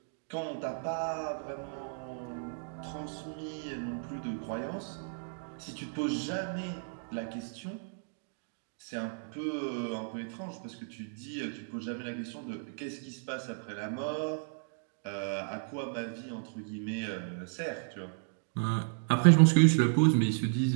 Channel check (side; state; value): left; silent; digital silence